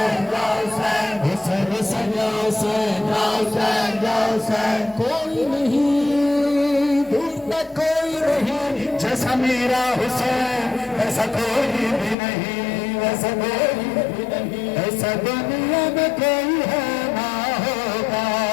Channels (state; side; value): drops out; right; at 12.2 s